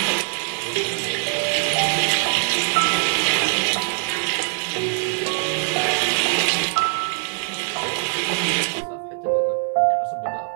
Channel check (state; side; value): silent; left; digital silence